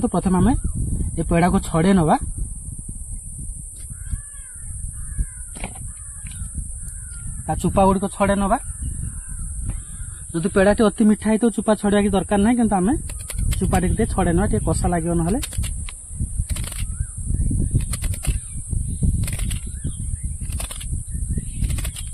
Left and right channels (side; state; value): both; identical; correlation 1.00